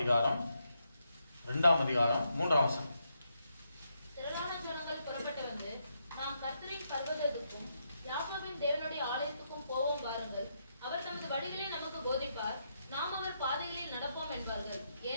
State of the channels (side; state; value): both; inverted; correlation -0.80